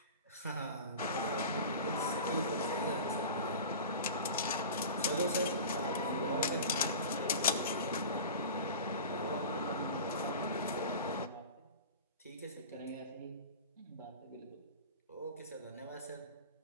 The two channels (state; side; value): inverted; both; correlation -0.35